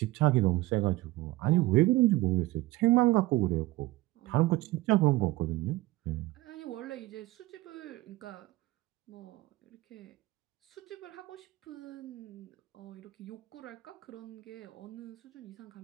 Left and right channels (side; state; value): left; quieter; 19.0 dB